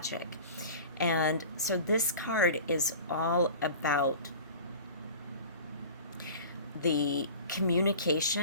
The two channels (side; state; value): both; inverted; correlation -0.39